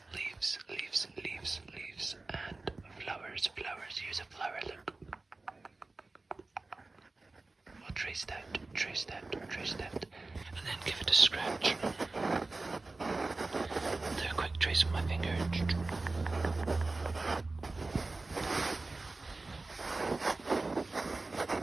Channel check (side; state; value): left; quieter; 3.4 dB